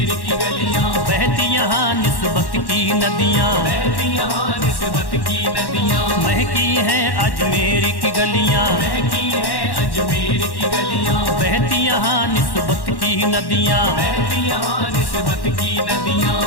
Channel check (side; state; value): right; late; 1.1 ms